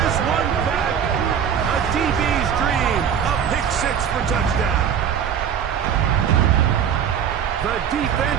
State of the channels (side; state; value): left; quieter; 8.2 dB